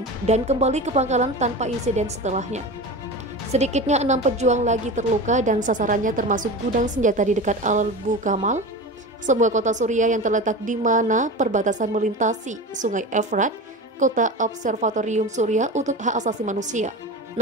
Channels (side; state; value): both; normal; correlation 0.28